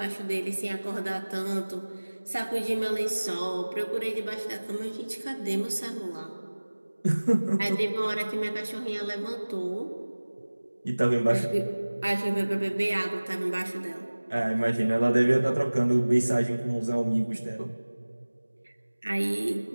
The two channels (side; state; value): both; inverted; correlation -1.00